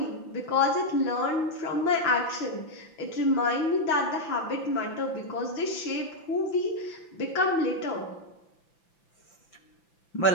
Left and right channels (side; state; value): right; late; 5.9 ms